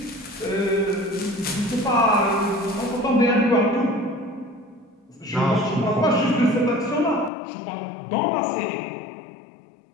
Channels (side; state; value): right; drops out; at 7.3 s